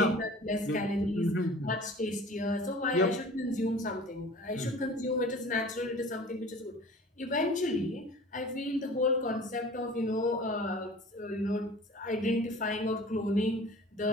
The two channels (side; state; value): both; normal; correlation 0.44